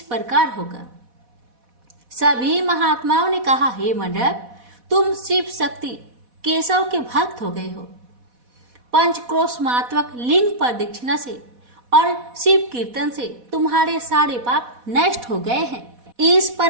प्रकार होगा। सभी महात्माओं ने कहा, हे मंडप, तुम शिव शक्ति केशव के भक्त हो गए हो। पंचक्रोशमात्मक लिंग प्रदक्षिणा से और शिव कीर्तन से तुम्हारे सारे पाप नष्ट हो गए हैं। इस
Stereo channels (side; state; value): left; late; 4.1 ms